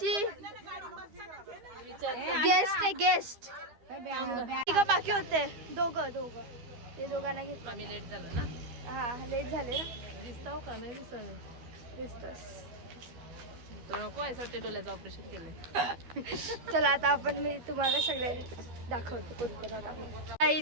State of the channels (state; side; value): late; left; 12 ms